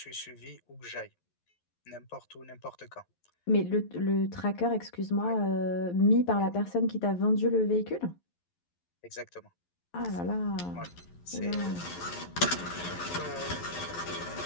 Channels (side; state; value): right; late; 11 ms